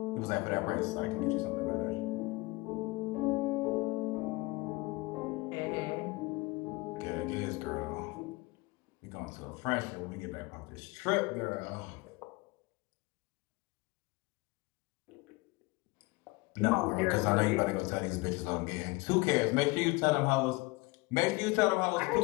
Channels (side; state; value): right; quieter; 24.0 dB